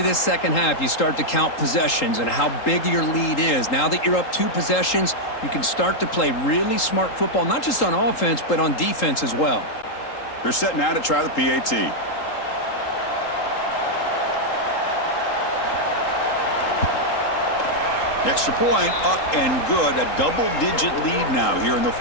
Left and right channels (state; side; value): late; right; 3.8 ms